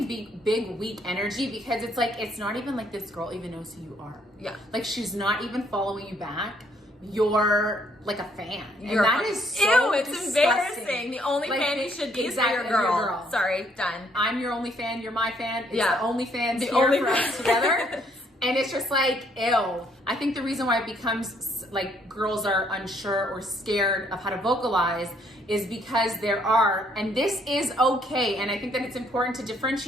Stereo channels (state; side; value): normal; both; correlation 0.67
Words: big weak energy, because it's like, it's not even like this girl even knows who you are. Yeah. Like, she's not even following you back. You're like a fan. And that is so ew, it's disgusting. embarrassing. The only like, fan you should be exactly, is for your girl. Sorry, done. I'm your only fan, you're my fan. It's Yeah. the only fans The here only for us together. And it's just like, ew. I think the reason why it becomes like girls are unsure or scared of how to vocalize is because there are, and this is okay, and I think that it's important to